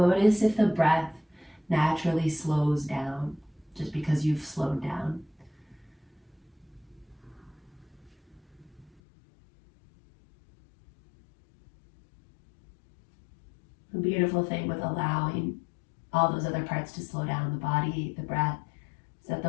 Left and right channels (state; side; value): drops out; right; at 8.9 s